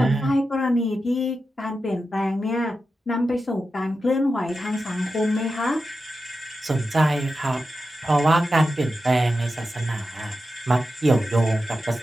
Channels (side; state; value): both; normal; correlation 0.90